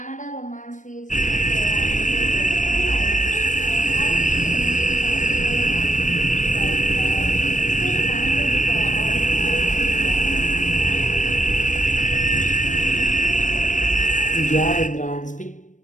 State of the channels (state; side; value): late; right; 0.37 ms